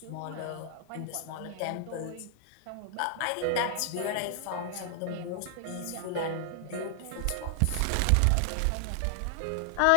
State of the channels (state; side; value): different; both; correlation 0.00